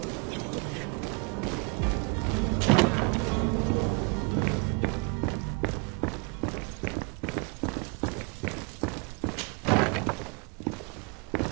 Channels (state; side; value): quieter; left; 32.3 dB